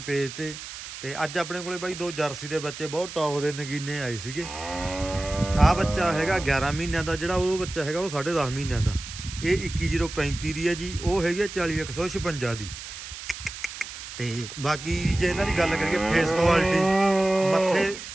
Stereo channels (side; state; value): right; noise; hiss, 11 dB below the sound